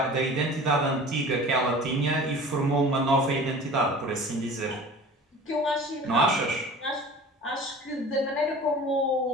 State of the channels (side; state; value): both; normal; correlation 0.41